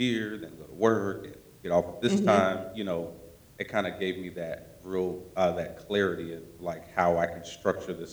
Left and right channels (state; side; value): identical; both; correlation 1.00